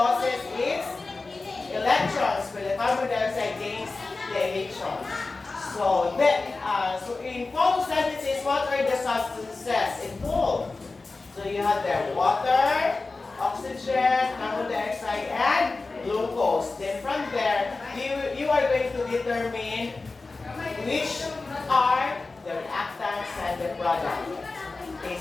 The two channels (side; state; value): right; quieter; 3.6 dB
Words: its electrons, but the carbon dioxide gains the electrons. So in photosynthesis, what are the substances involved? So you have the water, oxygen, carbon dioxide, and glucose. Then from there, you are going to determine which are the reactants and the product. Okay,